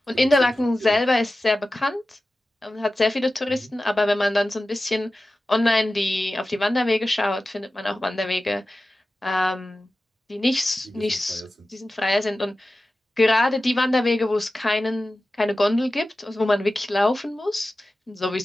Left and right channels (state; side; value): normal; both; correlation 0.95